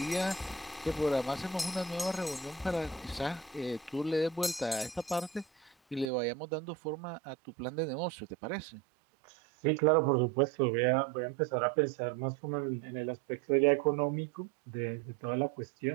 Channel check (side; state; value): left; drops out; at 6.1 s